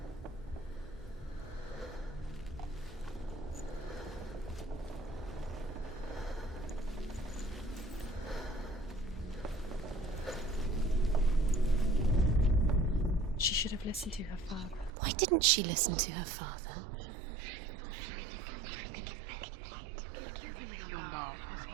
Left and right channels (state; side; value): drops out; left; at 14.9 s